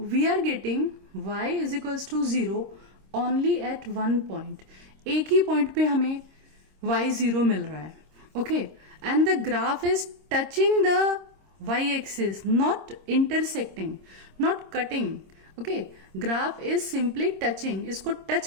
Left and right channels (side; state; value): left; late; 26 ms